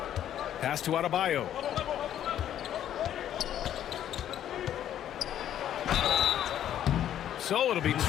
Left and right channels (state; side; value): quieter; right; 10.9 dB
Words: Pass to Adebayo. So it'll be 2